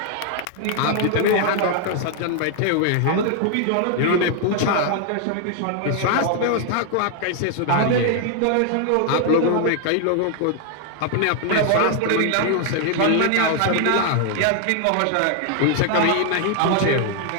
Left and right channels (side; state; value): both; different; correlation 0.00